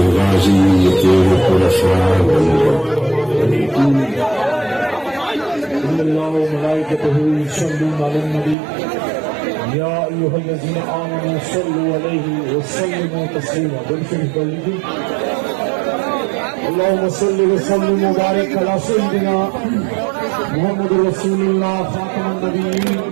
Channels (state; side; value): drops out; left; at 8.6 s